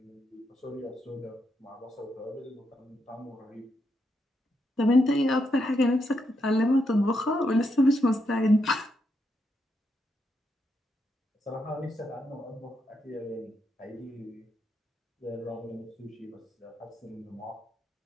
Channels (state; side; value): normal; both; correlation 0.81